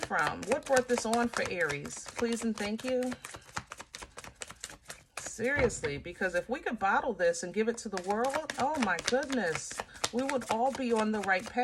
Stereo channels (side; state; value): both; identical; correlation 1.00